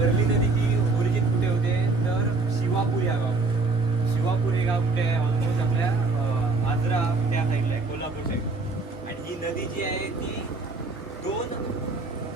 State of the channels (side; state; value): left; quieter; 3.7 dB